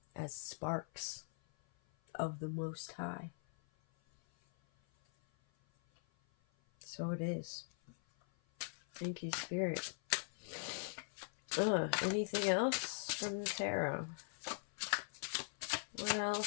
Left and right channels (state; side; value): silent; right; 50 dB below the other